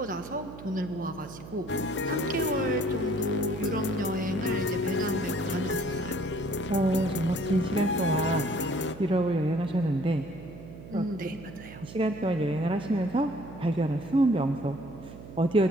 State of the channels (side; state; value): right; noise; hum, 14 dB below the sound